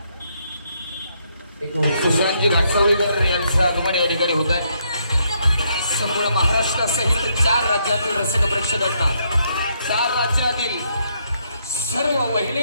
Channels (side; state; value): both; inverted; correlation -0.74